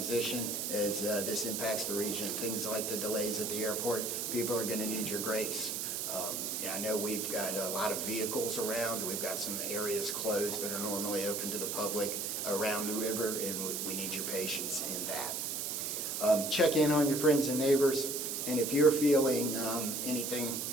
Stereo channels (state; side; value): noise; right; hiss, 2 dB below the sound